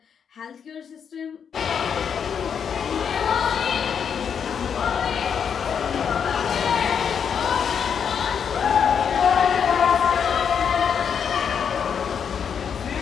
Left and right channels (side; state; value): right; quieter; 7.3 dB